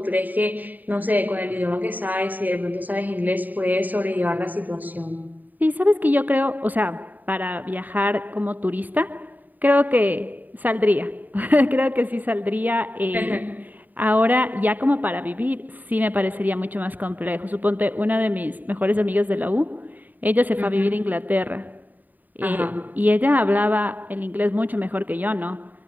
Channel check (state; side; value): late; left; 0.085 ms